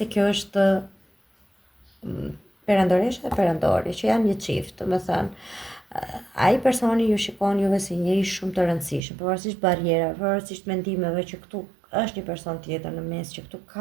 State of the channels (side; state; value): left; drops out; at 9.0 s